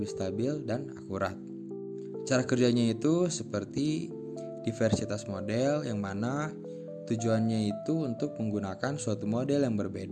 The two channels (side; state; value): both; identical; correlation 1.00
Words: stabil dan akurat. Cara kerjanya itu seperti diversitas model yang mana tujuannya itu untuk menggunakan suatu model yang